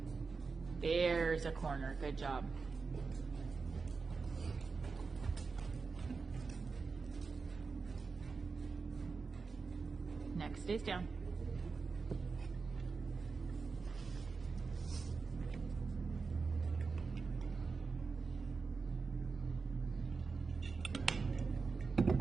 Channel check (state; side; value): quieter; left; 4.6 dB